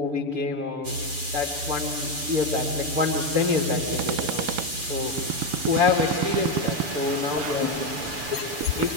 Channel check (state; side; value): late; left; 6.9 ms